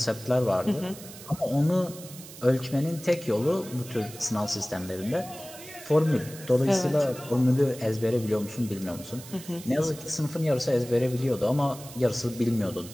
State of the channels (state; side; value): noise; right; hiss, 16 dB below the sound